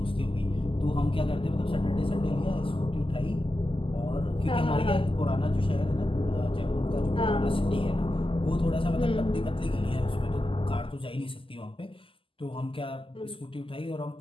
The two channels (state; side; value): late; right; 0.25 ms